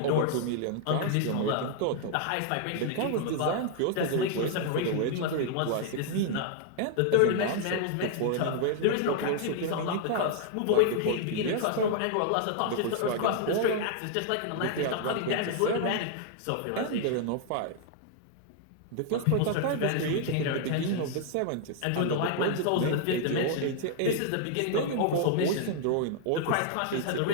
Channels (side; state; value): both; different; correlation 0.00